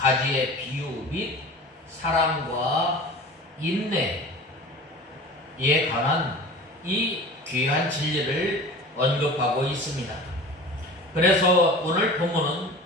비유 및 사랑과 인내에 관한 이 귀한 진리를 언급하고 있습니다. 그래서 오늘 본문은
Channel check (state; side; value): normal; both; correlation 0.38